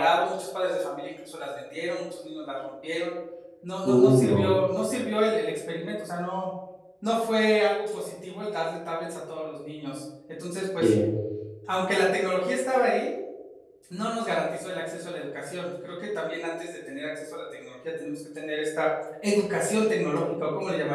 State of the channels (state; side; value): identical; both; correlation 1.00